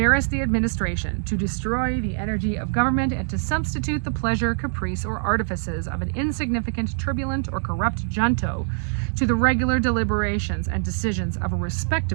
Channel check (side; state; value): left; silent; digital silence